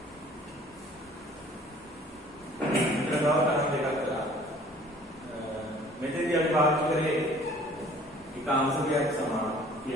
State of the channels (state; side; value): normal; both; correlation 0.53